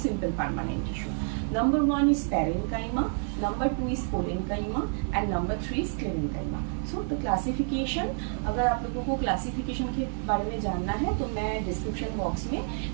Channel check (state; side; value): silent; left; 59 dB below the other